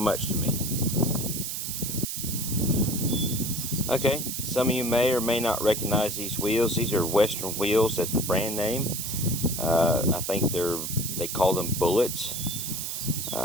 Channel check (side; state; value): right; noise; hiss, 4 dB below the sound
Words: much to me. Okay, some of you may or may not recognize these wheels. These are Western wheels. That's the brand name. I think they call them bullets.